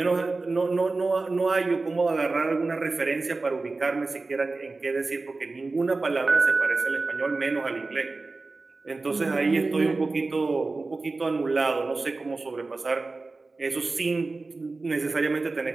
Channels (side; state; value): left; quieter; 3.6 dB